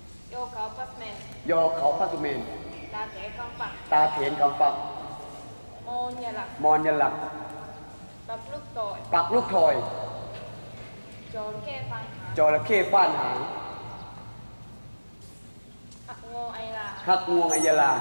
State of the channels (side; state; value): both; inverted; correlation -1.00